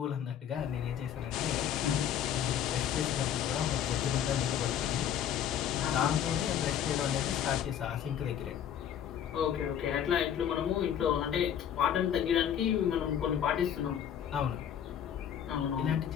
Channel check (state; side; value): quieter; right; 9.5 dB